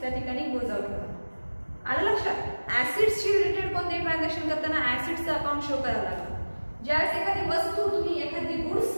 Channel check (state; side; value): inverted; both; correlation -1.00